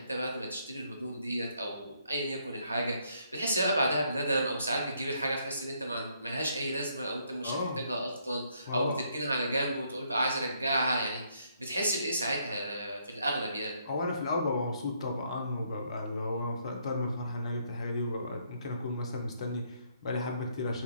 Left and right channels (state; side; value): inverted; both; correlation -0.71